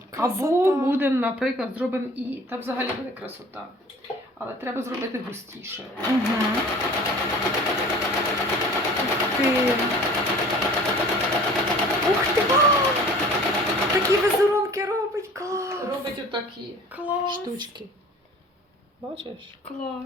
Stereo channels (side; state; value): both; normal; correlation 0.46